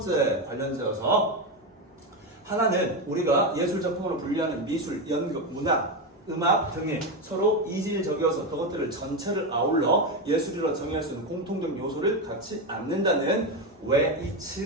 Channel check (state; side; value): normal; both; correlation 0.13